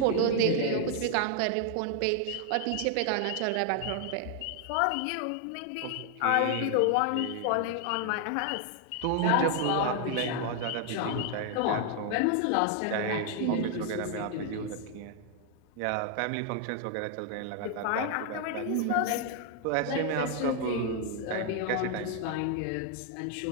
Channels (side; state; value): both; different; correlation 0.00